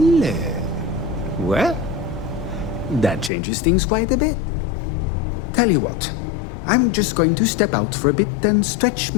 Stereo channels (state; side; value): drops out; right; at 3.3 s